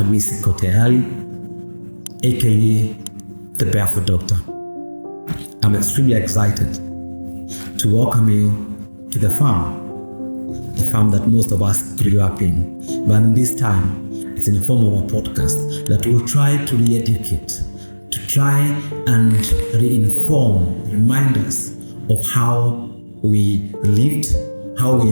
Kote Ali, aka the Barefoot Doctor. I'm extremely excited to welcome you to the farm that most of us grew up in. But in this time, it's in the form of a podcast that will try to re-educate, to try and reinform, remind us of how we lived, how we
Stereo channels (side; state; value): both; inverted; correlation -1.00